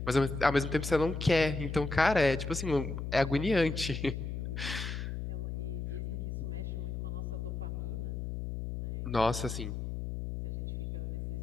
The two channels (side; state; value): left; noise; hum, 4 dB below the sound